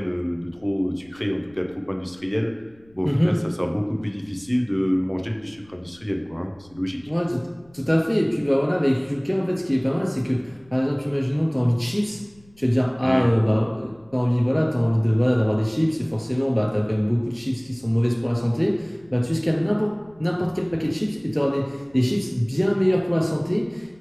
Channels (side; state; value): left; noise; rumble, 29 dB below the sound